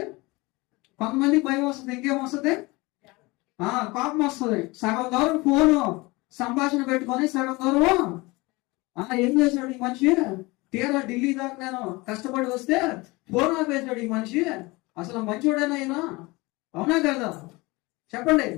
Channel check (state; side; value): quieter; right; 23.5 dB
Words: కొంతమందికి భయం వస్తుంది. ఇంకేమొస్తుంది? కోపం వస్తుంది. సగం దూరం ఫోను సంభాషణ పెట్టుకొని సగం దూరం ఏం చేశాడు ఈ మనిషి? తీరా ఢిల్లీ దాకా నేను కష్టపడి వస్తే ఫోన్ ఆపేశాడు ఈ మనిషి. అసలు మంచోడేనా అయినా? అవునా కదా? చెప్పండి.